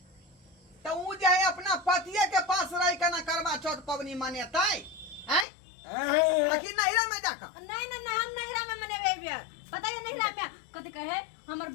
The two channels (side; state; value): right; drops out; at 5.5 s